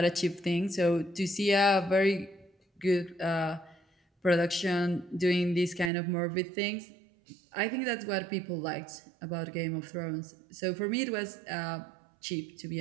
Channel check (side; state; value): left; drops out; at 5.9 s